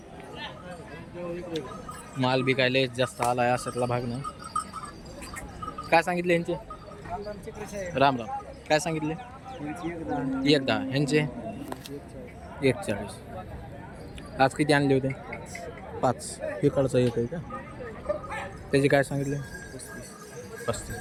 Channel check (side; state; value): both; identical; correlation 1.00